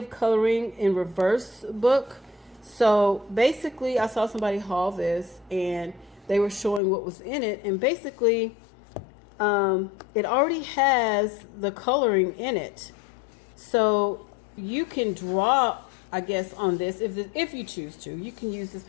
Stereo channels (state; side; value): drops out; right; at 6.8 s